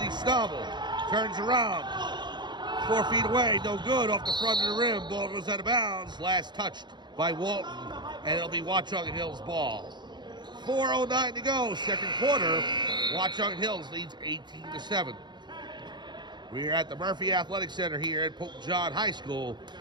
Schnabel turns around. 4 feet away, no good off the front of the rim. Ball goes out of bounds. Last touched by Walton, and it'll be Watchung Hills ball. 4:09 to go, second quarter. Watchung Hills leads 18-7. We're at the Murphy Athletic Center here at Pope John High School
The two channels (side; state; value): left; late; 0.21 ms